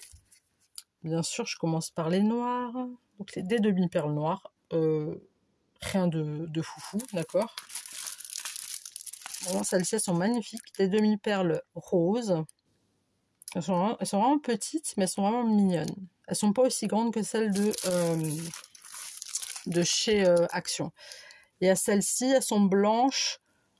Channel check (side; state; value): both; identical; correlation 1.00